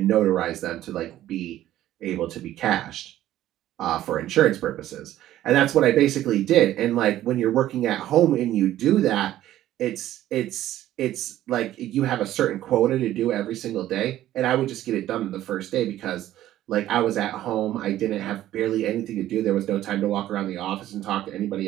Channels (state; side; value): quieter; left; 13.4 dB